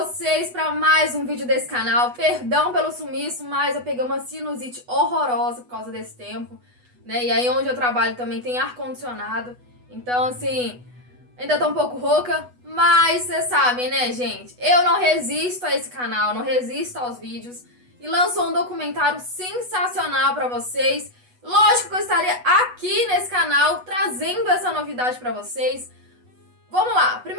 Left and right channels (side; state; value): left; late; 8.1 ms